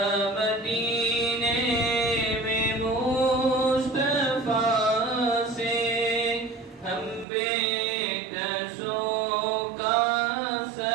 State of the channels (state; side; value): drops out; left; at 7.2 s